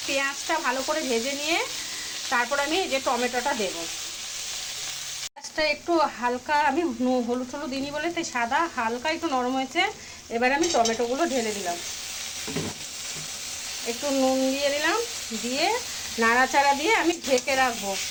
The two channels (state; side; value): identical; both; correlation 1.00